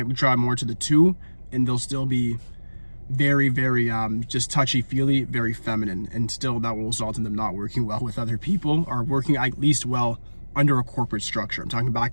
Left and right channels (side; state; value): both; inverted; correlation -1.00